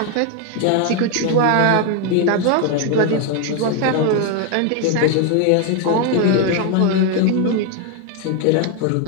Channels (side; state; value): both; different; correlation 0.01